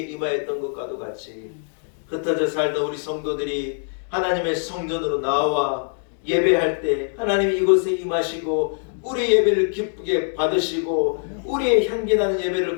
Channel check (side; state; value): right; silent; 61 dB below the other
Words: 것과도 같이 흩어져 살던 우리 성도들이 하나님의 성전으로 나와 예배할 때 하나님이 이곳에 임하시고 우리 예배를 기쁘게 받으시고 우리의 향기나는 예배를